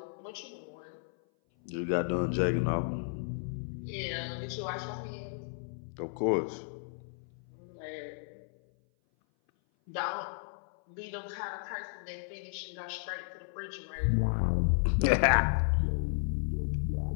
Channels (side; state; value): right; silent; 55 dB below the other